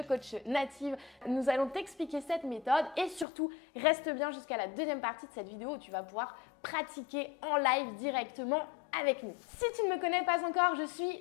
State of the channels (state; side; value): drops out; right; at 3.2 s